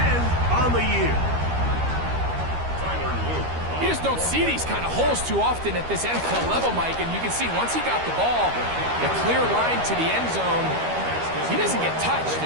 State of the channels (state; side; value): late; left; 13 ms